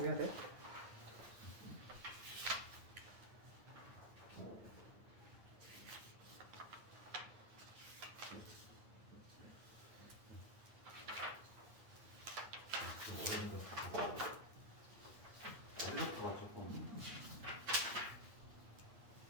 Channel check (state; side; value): late; left; 9.1 ms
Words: 해야 돼. 어려워서 조금